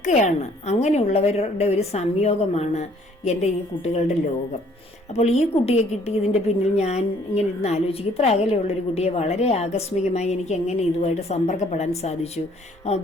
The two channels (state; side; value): normal; both; correlation 0.60